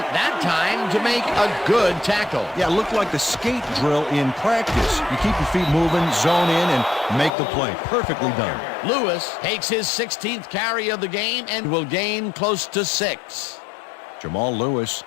that time to make a good tackle. Yeah, it looked like the skate drill in practice. You keep your feet moving, zone in, and make the play. Perfectly done. Lewis takes his 16th carry of the game and will gain close to 6. Jamal Lewis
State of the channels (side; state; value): right; drops out; at 7.3 s